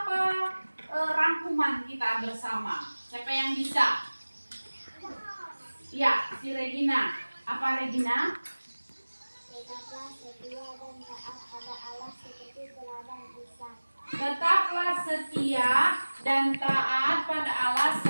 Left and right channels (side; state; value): both; inverted; correlation -1.00